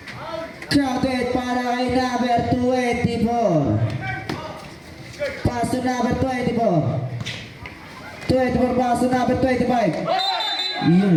Counted para kay number 24. Pass to number 24. 24 pass to number 25.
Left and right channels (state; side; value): identical; both; correlation 1.00